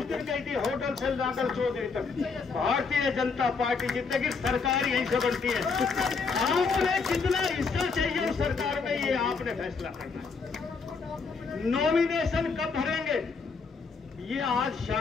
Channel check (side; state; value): right; quieter; 4.9 dB